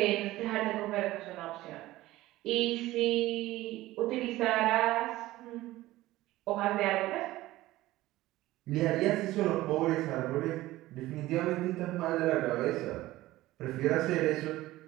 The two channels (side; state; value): left; quieter; 16.9 dB